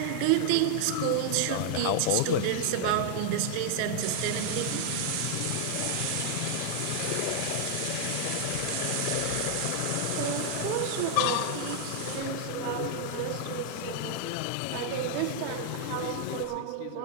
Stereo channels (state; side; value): different; both; correlation 0.00